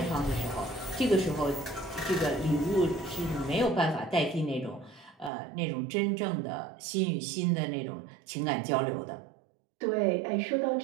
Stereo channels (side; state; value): left; drops out; at 5.3 s